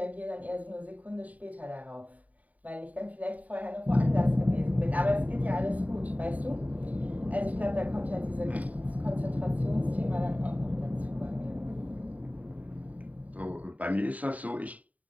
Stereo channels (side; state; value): left; late; 0.072 ms